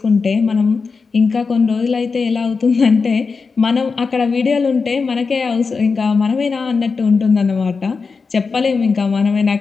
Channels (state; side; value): quieter; right; 4.8 dB